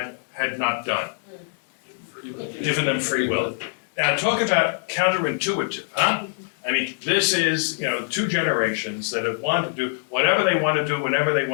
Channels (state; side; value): silent; right; digital silence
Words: had not done? Given them free will. Now talk about counterintuitive, huh? I mean, this is, two generations that have wanted to do whatever they want to do, whenever they